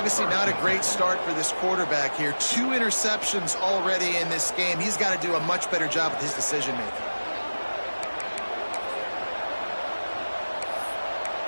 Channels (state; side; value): inverted; both; correlation -1.00